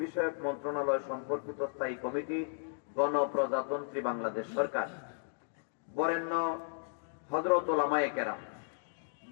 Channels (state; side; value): silent; right; digital silence